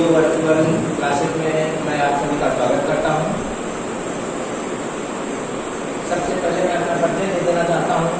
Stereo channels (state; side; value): identical; both; correlation 1.00